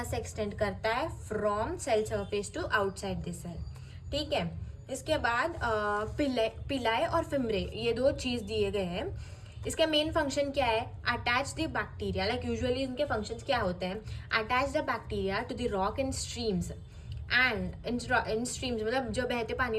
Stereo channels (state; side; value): identical; both; correlation 1.00